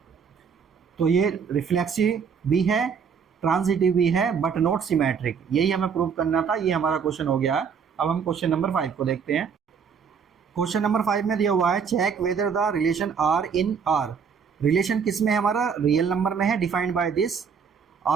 तो ये रिफ्लेक्सिव भी है, ट्रांजिटिव भी है, बट नॉट सिमेट्रिक। यही हमें प्रूव करना था। ये हमारा क्वेश्चन हो गया है। अब हम क्वेश्चन नंबर 5 को देखते हैं। क्वेश्चन नंबर 5 में दिया हुआ है, check whether the relation R in R. Relation किस में है हमारा, रियल नंबर में है। Defined by this,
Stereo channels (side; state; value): left; quieter; 6.4 dB